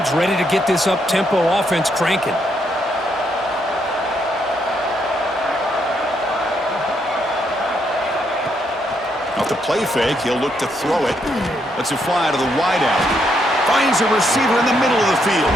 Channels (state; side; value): normal; both; correlation 0.76